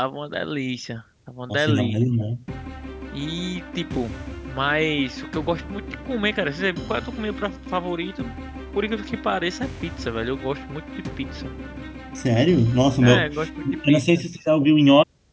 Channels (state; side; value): identical; both; correlation 1.00